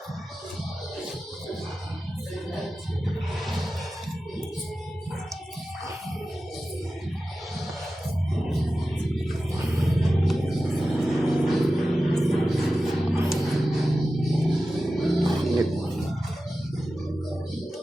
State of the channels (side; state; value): both; normal; correlation 0.94